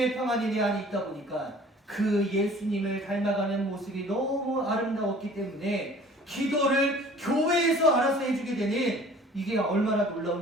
평안이 내 안에 있다 보니까 그 예수님을 닮아가는 모습이 너무 아름다웠기 때문에 기도를 교회에서 알아서 해주게 되는 이게 얼마나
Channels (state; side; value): normal; both; correlation 0.49